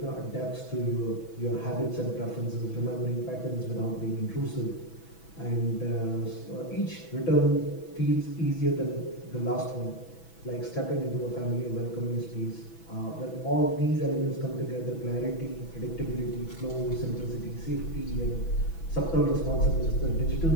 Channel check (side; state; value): right; late; 6.1 ms